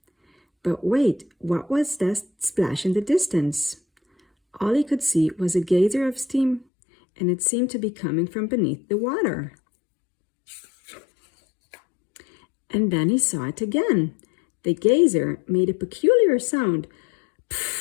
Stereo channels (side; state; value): right; drops out; at 6.7 s